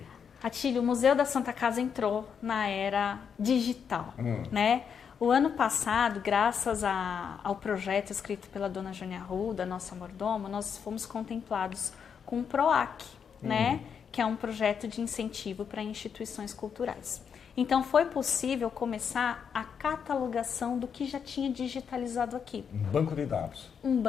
Atílio, o Museu da Santa Casa entrou na era digital, né? O ano passado, graças ao projeto escrito pela dona Jônia Arruda, nossa mordomo, nós fomos contemplados com o PROAC, né? Que é um projeto de incentivo para instituições culturais. Então, foi possível começar a catalogação do que já tinha digitalizado aqui. Um banco de dados. Um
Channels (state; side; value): quieter; right; 7.0 dB